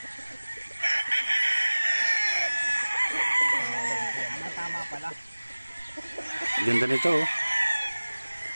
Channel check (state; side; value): inverted; both; correlation -1.00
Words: Tama pala. Ganda nito, oh.